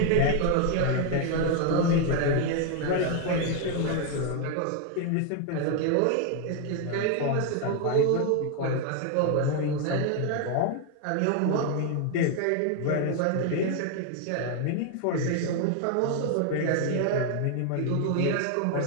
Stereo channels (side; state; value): both; different; correlation 0.01